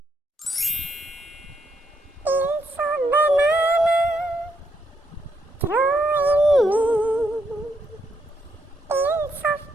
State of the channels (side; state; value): both; normal; correlation 0.77